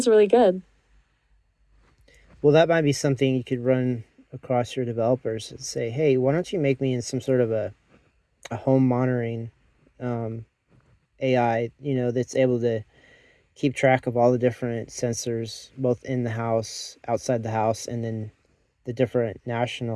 really good. Well, that might be something you could run across your developers and say, hey, why don't you make me in some sort of a home monitoring um, AI, that's able to keep track of all the different sensors, both in the house, outside the house, and then the different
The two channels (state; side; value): identical; both; correlation 1.00